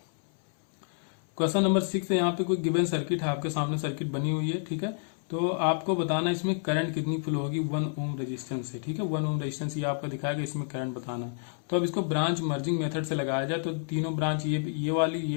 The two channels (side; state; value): right; silent; 58 dB below the other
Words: क्वेश्चन नंबर 6 है, यहाँ पे कोई गिवन सर्किट है, आपके सामने सर्किट बनी हुई है, ठीक है। तो आपको बताना इसमें करंट कितनी फ्लो होगी 1 ओम रेजिस्टेंस से, ठीक है। 1 ओम रेजिस्टेंस ये आपका दिखाएगा, इसमें करंट बताना। तो अब इसको ब्रांच मर्जिंग मेथड से लगाया जाए तो तीनों ब्रांच ये